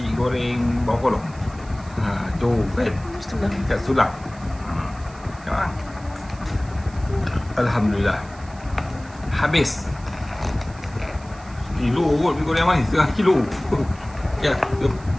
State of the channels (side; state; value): right; noise; hiss, 24 dB below the sound